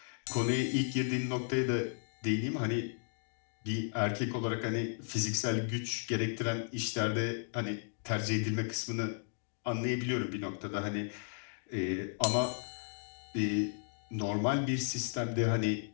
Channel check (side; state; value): right; silent; digital silence